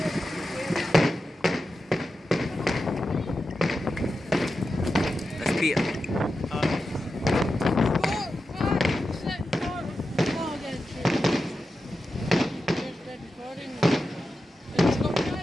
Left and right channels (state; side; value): normal; both; correlation 0.90